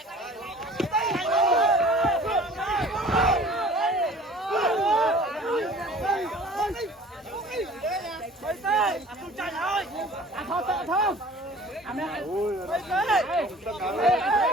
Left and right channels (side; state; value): both; normal; correlation 0.47